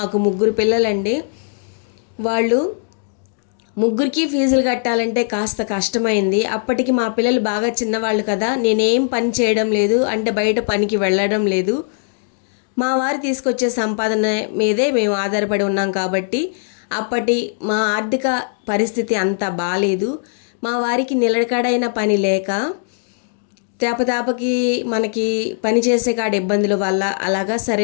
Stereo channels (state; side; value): silent; right; 66 dB below the other